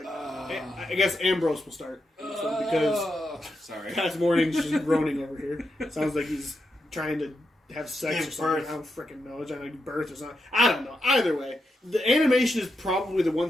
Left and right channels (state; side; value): normal; both; correlation 0.85